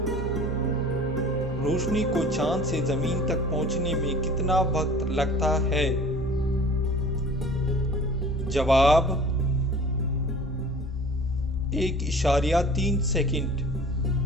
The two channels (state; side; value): normal; both; correlation 0.45